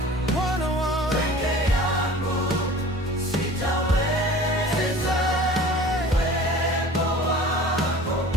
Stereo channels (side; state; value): both; normal; correlation 0.43